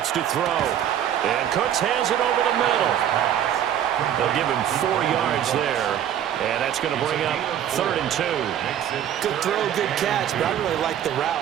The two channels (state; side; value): quieter; left; 10.3 dB